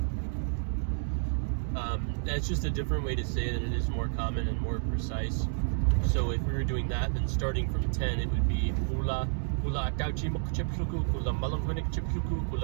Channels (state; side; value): silent; left; digital silence